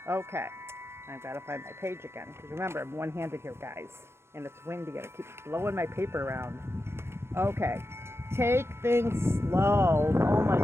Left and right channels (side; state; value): left; late; 0.12 ms